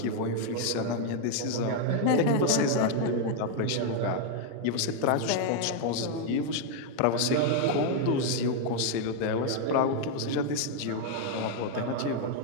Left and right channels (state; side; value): different; both; correlation 0.00